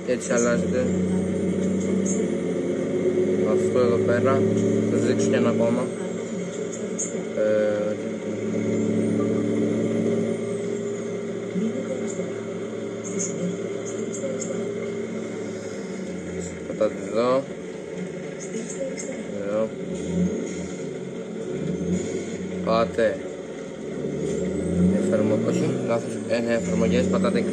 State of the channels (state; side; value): identical; both; correlation 1.00